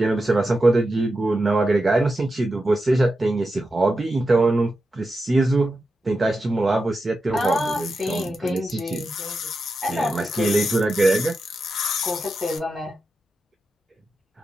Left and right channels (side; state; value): both; normal; correlation 0.89